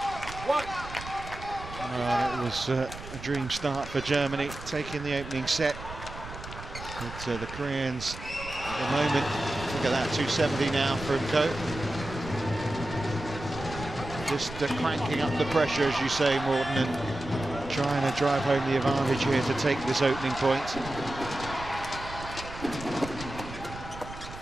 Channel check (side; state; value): right; noise; rumble, 12 dB below the sound